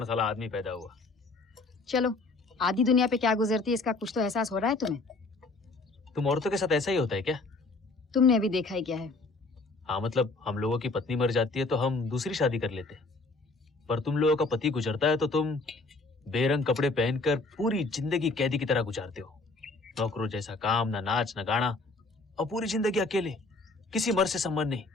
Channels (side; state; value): right; quieter; 3.4 dB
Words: साला आदमी पैदा हुआ। चलो, आधी दुनिया पे क्या गुजरती है इसका कुछ तो एहसास हो रहा है तुम्हें। तुम औरतों के साथ ऐसा ही होता है क्या? तुमने अभी देखा ही क्या है। हाँ, मतलब हम लोगों की पत्नी मर जाती है तो हम दूसरी शादी कर लेते हैं, पर तुम लोगों का पति गुजरता है तो तुम बेरंग कपड़े पहनकर पूरी जिंदगी कैदी की तरह गुजारते हो। नौकरों जैसा काम, ना नाच ना गाना, और पूरी जिंदगी अकेले, किसी मर्द से संबंध नहीं।